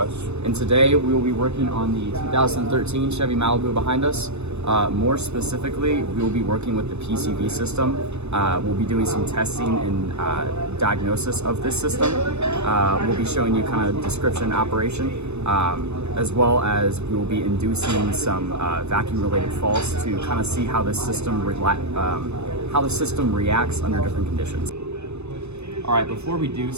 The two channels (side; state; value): left; late; 0.81 ms